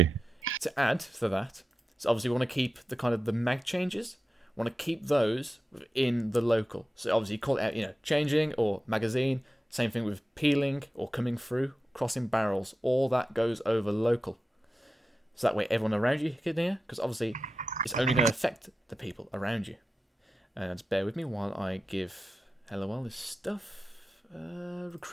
add to that, so obviously we want to keep the kind of the mag changes. We want to keep those in the local. So obviously you call it out, changing or magazine. Same thing with peeling or coming through, crossing barrels. All that goes over local. So that way everyone around you can hear, because obviously it's only going to affect the people around you. And just bear with me while I give Halliwell this stuff.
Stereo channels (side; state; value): both; normal; correlation 0.92